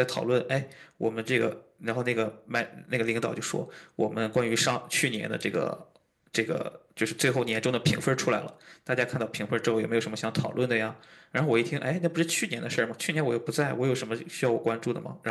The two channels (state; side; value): identical; both; correlation 1.00